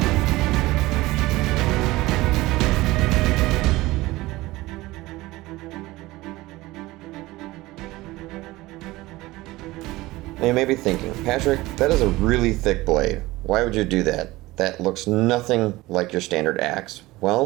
Now you may be thinking, Patrick, that is a really thick blade. Why would you do that? That looks nothing like your standard axe.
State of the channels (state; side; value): quieter; left; 19.1 dB